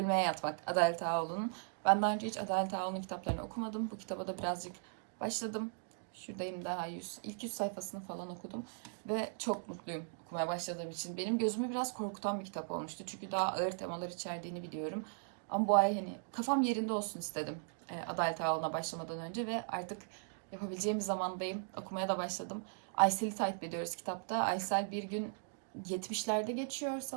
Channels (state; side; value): silent; left; digital silence